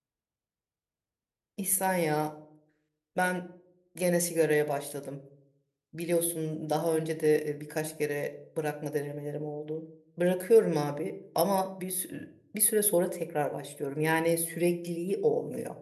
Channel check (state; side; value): identical; both; correlation 1.00